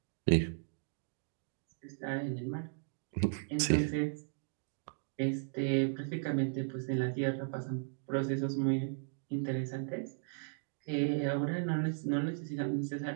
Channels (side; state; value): left; silent; digital silence